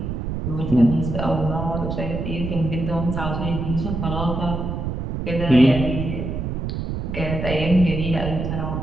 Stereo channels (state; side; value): noise; right; rumble, 4 dB below the sound